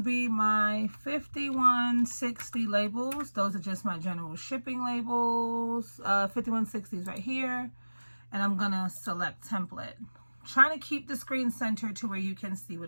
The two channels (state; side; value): inverted; both; correlation -1.00